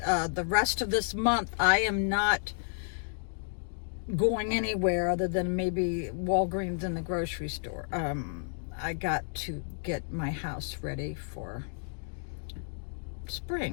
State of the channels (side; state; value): right; silent; digital silence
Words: the rest of this month I am not going anywhere other than maybe Walgreens and the grocery store. I got to get my house ready for